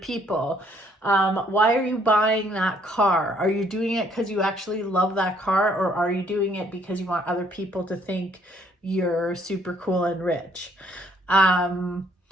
Why are you buying that car? Are you doing it because you actually love that car? Or are you doing it because you want other people to think you're super cool and rich?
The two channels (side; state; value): both; normal; correlation 0.65